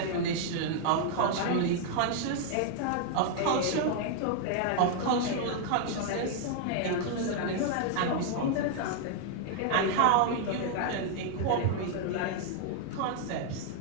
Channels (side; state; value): both; different; correlation 0.00